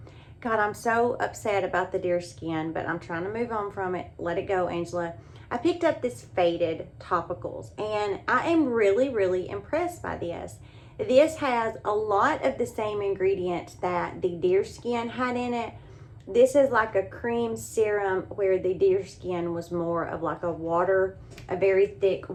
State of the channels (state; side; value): identical; both; correlation 1.00